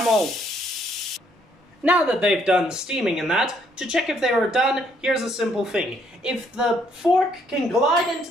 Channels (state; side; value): normal; both; correlation 0.68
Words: old. Now that they've done steaming and that, to check if they are done, here's a simple thing. If the fork can glide into